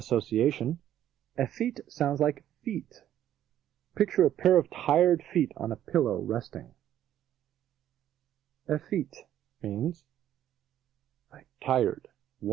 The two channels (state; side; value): quieter; left; 11.5 dB